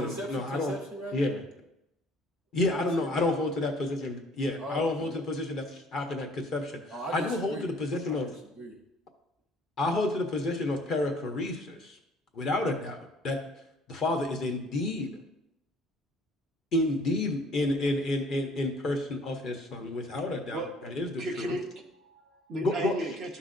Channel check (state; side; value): normal; both; correlation 0.56